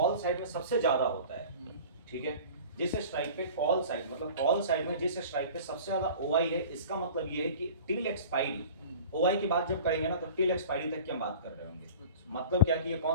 साइड में सबसे ज्यादा होता है, ठीक है, जिस स्ट्राइक पे कॉल साइड, मतलब कॉल साइड में जिस स्ट्राइक पे सबसे ज्यादा ओआई है, इसका मतलब ये है कि टिल एक्सपायरी, ओआई की बात जब करेंगे ना, तो टिल एक्सपायरी तक की हम बात कर रहे होंगे। मतलब क्या कि ये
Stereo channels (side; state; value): both; inverted; correlation -0.41